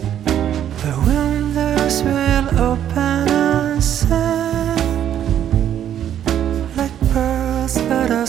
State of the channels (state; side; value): quieter; left; 10.3 dB